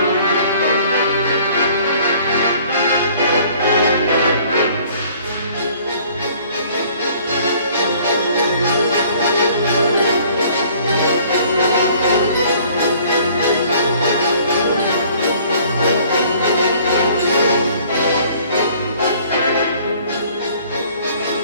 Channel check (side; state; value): both; inverted; correlation -0.56